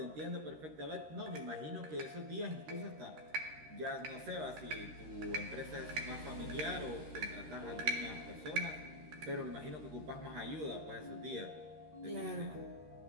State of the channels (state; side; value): late; left; 13 ms